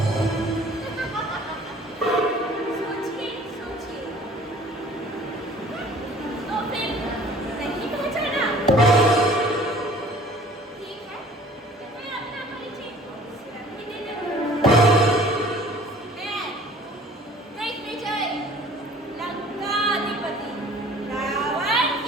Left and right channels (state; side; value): normal; both; correlation 0.50